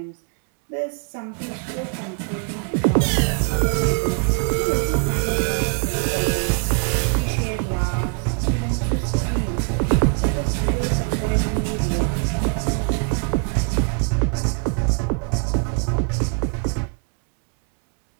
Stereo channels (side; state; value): left; quieter; 37.7 dB